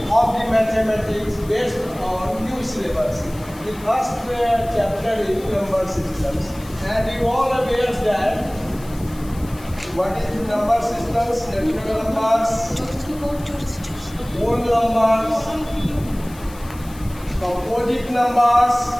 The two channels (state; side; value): noise; left; hiss, 21 dB below the sound